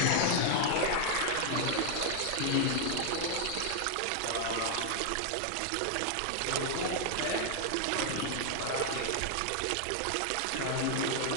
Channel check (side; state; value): both; different; correlation 0.00